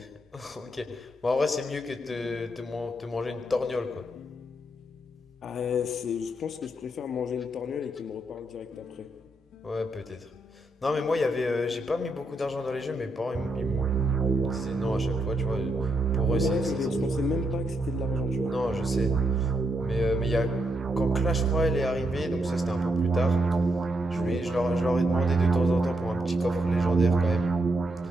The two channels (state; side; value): normal; both; correlation 0.80